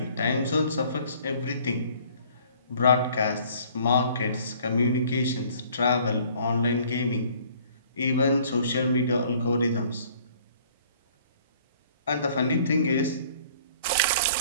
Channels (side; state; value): both; inverted; correlation -0.56